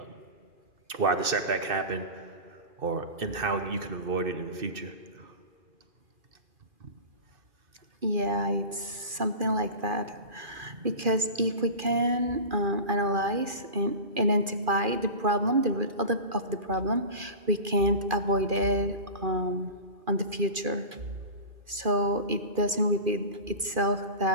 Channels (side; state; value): left; late; 2.4 ms